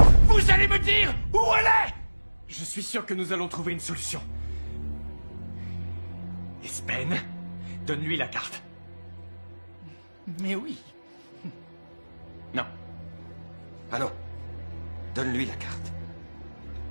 Vous allez me dire où elle est? Je suis sûr que nous allons trouver une solution. Espen, donne-lui la carte. Mais oui. Non. Ah non. Donne-lui la carte.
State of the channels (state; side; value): inverted; both; correlation -1.00